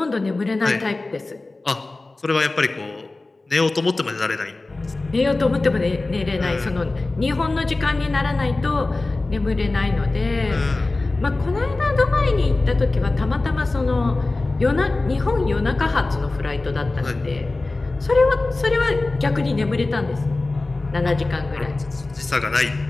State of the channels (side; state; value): right; quieter; 3.2 dB